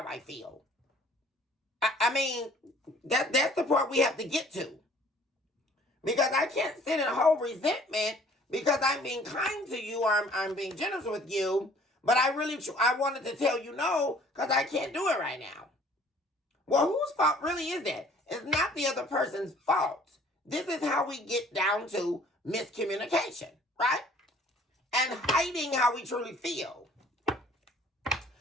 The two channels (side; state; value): both; normal; correlation 0.55